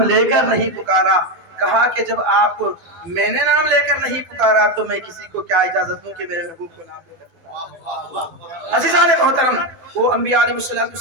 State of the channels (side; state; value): left; late; 12 ms